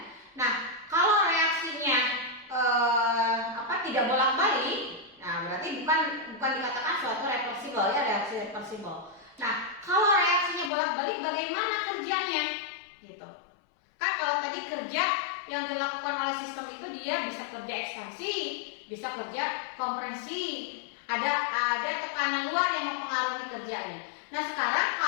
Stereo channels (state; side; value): drops out; right; at 10.7 s